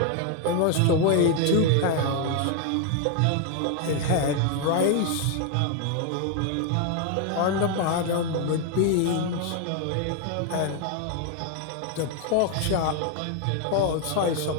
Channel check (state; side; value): different; both; correlation 0.01